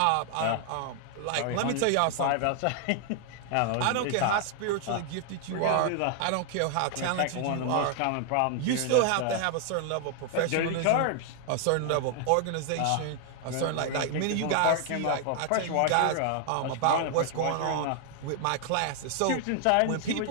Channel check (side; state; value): both; different; correlation 0.00